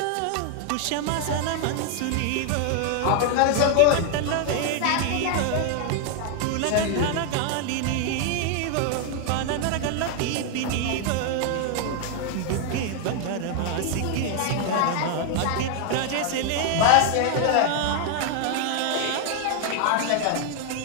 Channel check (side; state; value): both; different; correlation 0.00